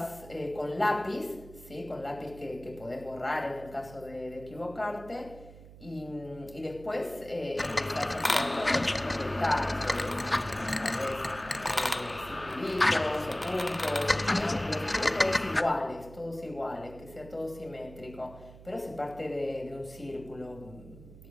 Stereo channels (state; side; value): noise; right; hum, 18 dB below the sound